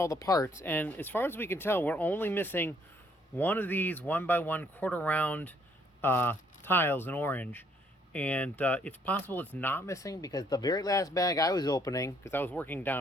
the parts, and as far as we can tell, we're only missing one of these 1x1 quarter round tiles in orange, and it's possible it's not missing because the very last bag I was opening, because I was working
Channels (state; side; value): normal; both; correlation 0.66